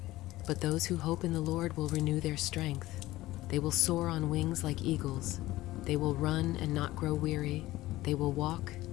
But those who hope in the Lord will renew their strength. They will soar on wings like eagles. They will run and not grow weary. They will walk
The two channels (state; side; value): quieter; right; 17.1 dB